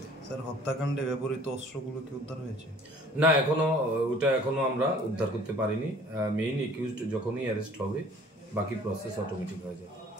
স্যার, হত্যাকাণ্ডে ব্যবহৃত অস্ত্রগুলো কি উদ্ধার হয়েছে? না, ওটা এখনো আমরা উদ্ধার করতে পারিনি। মেইন একিউজড যখনই অ্যারেস্ট হবে বাকি প্রসেস অটোমেটিক হয়ে যাবে।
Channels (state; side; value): normal; both; correlation 0.52